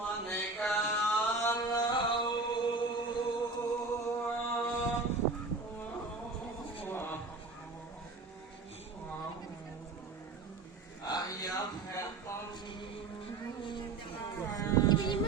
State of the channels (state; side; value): quieter; left; 3.8 dB